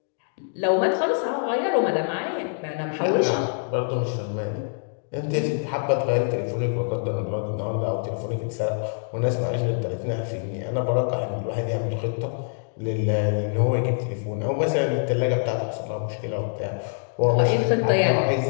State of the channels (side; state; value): right; silent; 62 dB below the other